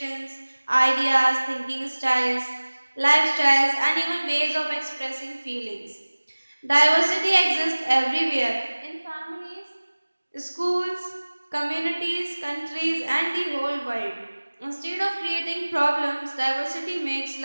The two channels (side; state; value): both; inverted; correlation -1.00